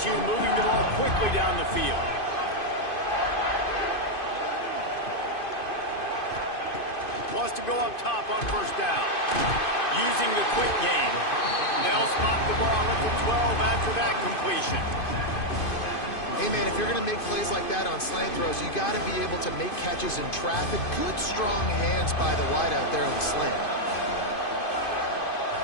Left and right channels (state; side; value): late; right; 2.5 ms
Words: moving the ball quickly down the field. Wants to go up top on 1st down. Using the quick game. They'll spot the ball at the 12 after that completion. Hey, man, if you're going to make plays like that on slant throws, you got to be able to make catches in traffic. Good, strong hands by the wide out there on the slant.